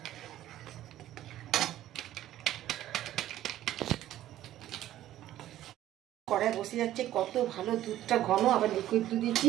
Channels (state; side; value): quieter; left; 13.3 dB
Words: কড়াই বসে যাচ্ছে, কত ভালো দুধটা ঘন, আবার লিকুইড দুধ